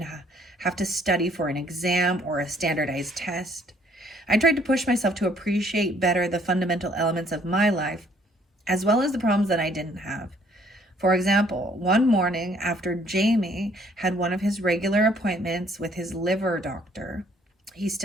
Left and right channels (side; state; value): both; normal; correlation 0.63